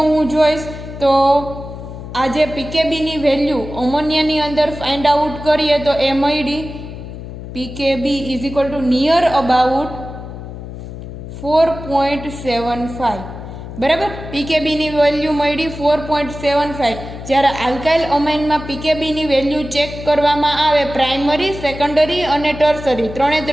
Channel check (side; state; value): left; noise; hum, 11 dB below the sound